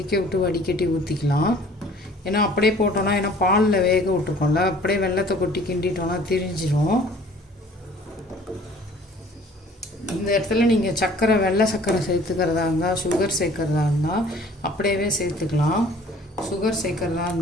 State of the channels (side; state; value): both; normal; correlation 0.52